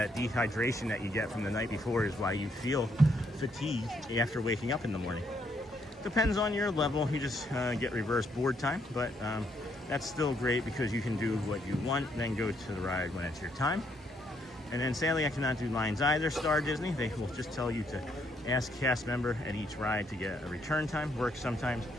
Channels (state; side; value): normal; both; correlation 0.72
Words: dehydration that you get from the night before is why you feel fatigued after waking up in the morning. Depends on your level. You just get reverse board time, but that's still great because you can do what you want, then go to the ride when it's your time. And then sadly, I cannot do lines either, Star Disney. They will just tell you to ask cast member at each ride to get a return time, works sometimes,